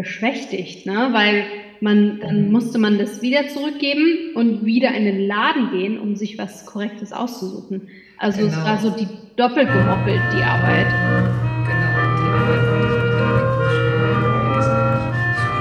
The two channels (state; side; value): identical; both; correlation 1.00